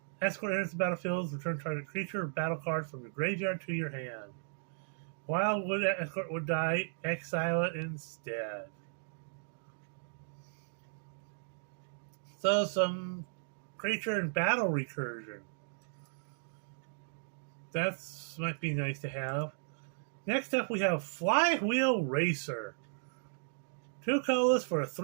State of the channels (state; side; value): silent; left; digital silence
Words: Escort enters the battlefield. Return target creature or battle card from your graveyard to your hand. Wildwood Escort would die. Exile it instead. So some creature and battle recursion. That might be nice to have. Next up, we have Flywheel Racer. 2 colors for a